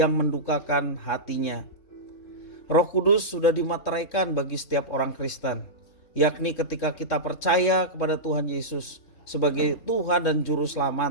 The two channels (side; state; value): right; late; 3.6 ms